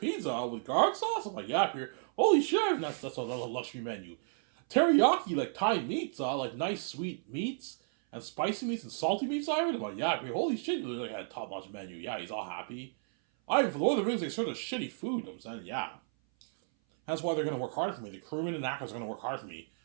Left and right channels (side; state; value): left; silent; 56 dB below the other